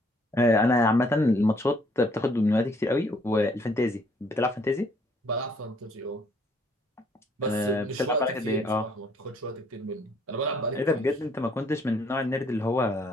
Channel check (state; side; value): normal; both; correlation 0.64